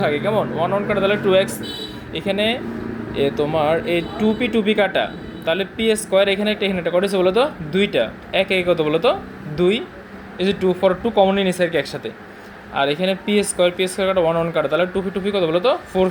থাকে, কেমন 1 1 কাটা তাহলে 2x, এখানে তোমার এই 2p কাটা তাহলে p স্কোয়ার, এখানে একটা এখানে একটা করেছে বলো তো দুইটা, এক এক কত বলো তো 2, এই যে 2 ফর 2 কমনলি নিছে আর কি একসাথে, আর এখানে p স্কোয়ার কাটা 1 1 কাটা তাহলে 2p কত বলো তো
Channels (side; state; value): both; identical; correlation 1.00